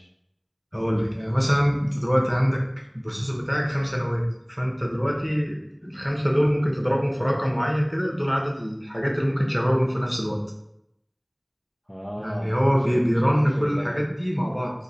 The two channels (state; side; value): identical; both; correlation 1.00